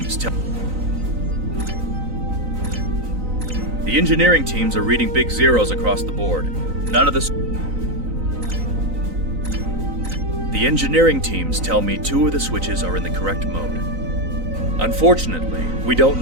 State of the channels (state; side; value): late; left; 3.9 ms